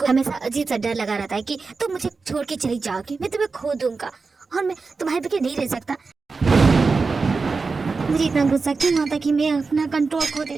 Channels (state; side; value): quieter; left; 4.4 dB